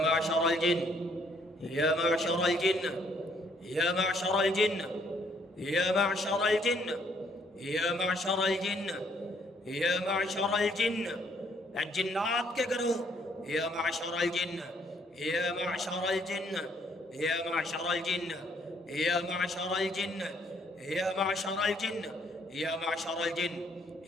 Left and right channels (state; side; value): normal; both; correlation 0.67